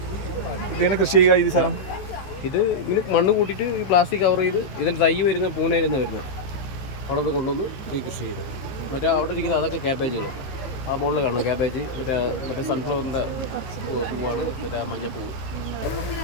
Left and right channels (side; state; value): right; late; 15 ms